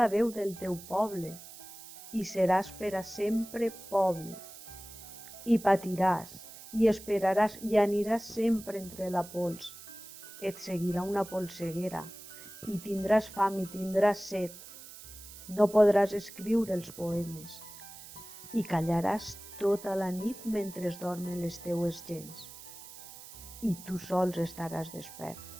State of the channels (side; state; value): right; noise; hiss, 16 dB below the sound